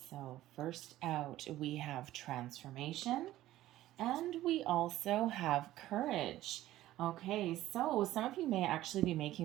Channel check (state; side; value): quieter; left; 14.8 dB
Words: So first out, we have transformation, and we also have courage. Okay, so some of you may actually be